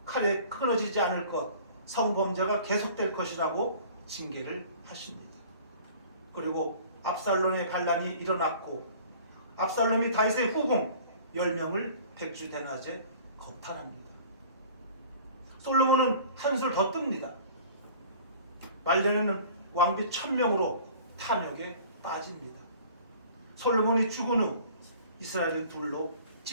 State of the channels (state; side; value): inverted; both; correlation -0.47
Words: 칼에 끊어지지 않을 것, 성범죄가 계속될 것이라고 징계를 하십니다. 그리고 압살롬의 반란이 일어났고 압살롬이 다윗의 후궁 10명을 백주대낮에 겁탈합니다. 솔로몬은 한술 더 뜹니다. 말년에는 왕비 1000명으로 탐욕에 빠집니다. 솔로몬이 죽은 후 이스라엘은 둘로